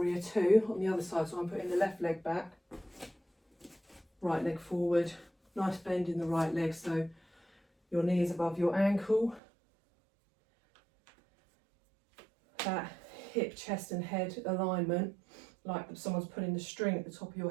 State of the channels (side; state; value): left; drops out; at 9.4 s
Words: Two on the other side. So I'm putting the left leg back, right leg forward, nice bend in the right leg so your knee is above your ankle. That hip, chest and head alignment, like someone's putting the string at the top of